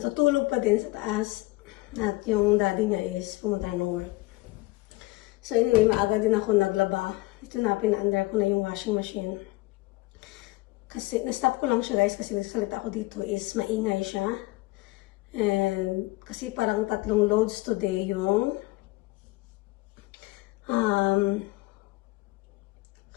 pa din sa taas at yung daddy niya is pumunta ng work. So, anyway, maaga din ako naglaba. Ito na, pina-under ko na yung washing machine. Kasi, na-stop ko lang siya, guys, kasi nagsalita ako dito is maingay siya. And, kasi parang 3 loads today yung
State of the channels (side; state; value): right; quieter; 21.3 dB